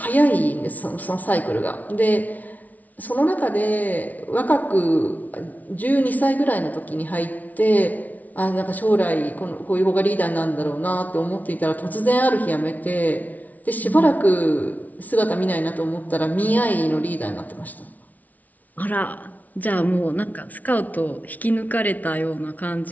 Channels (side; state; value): right; late; 0.075 ms